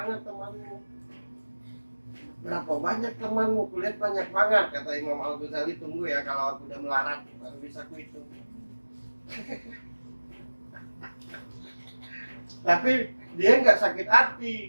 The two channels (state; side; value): inverted; both; correlation -1.00